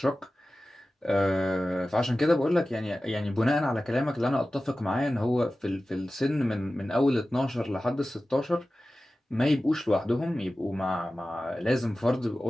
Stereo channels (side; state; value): both; normal; correlation 0.95